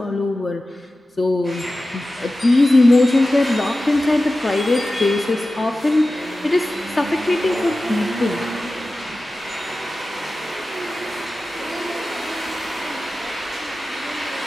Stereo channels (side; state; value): both; normal; correlation 0.95